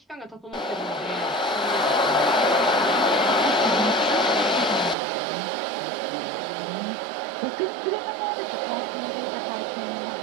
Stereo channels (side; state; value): left; drops out; at 5.0 s